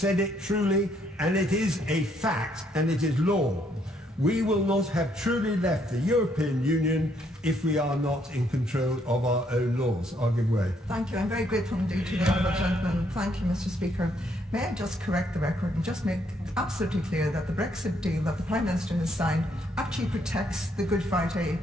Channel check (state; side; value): normal; both; correlation 0.71